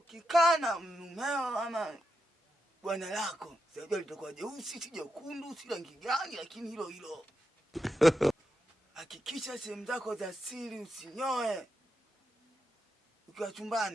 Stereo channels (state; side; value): normal; both; correlation 0.86